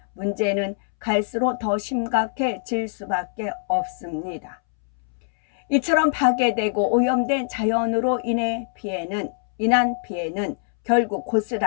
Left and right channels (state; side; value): silent; right; 63 dB below the other